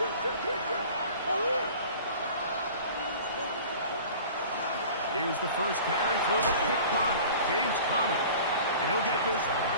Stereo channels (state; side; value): inverted; both; correlation -0.43